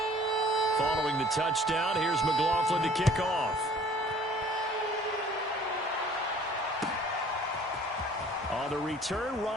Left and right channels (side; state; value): both; normal; correlation 0.53